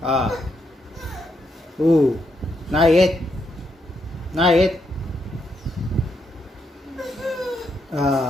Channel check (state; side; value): normal; both; correlation 0.79